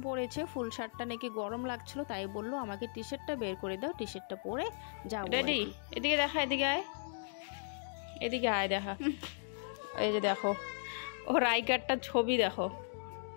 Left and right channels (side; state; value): right; silent; digital silence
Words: পড়েছে, ফুল শার্টটা নাকি গরম লাগছিল, তাই বললো আমাকে টি শার্টটা বের করে দাও, টি শার্টটা পরে যাও। রেডি? এদিকে দেখা, এদিকে আয়, এদিকে আয়, দেখা। এই যে দেখো ওর আই কার্ডটার ছবি দেখো,